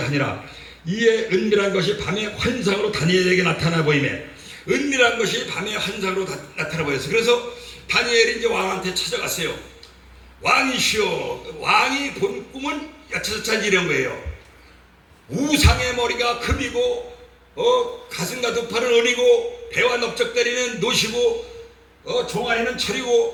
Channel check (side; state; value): both; identical; correlation 1.00